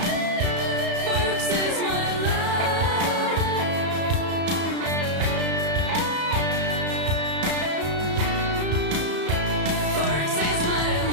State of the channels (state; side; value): late; left; 34 ms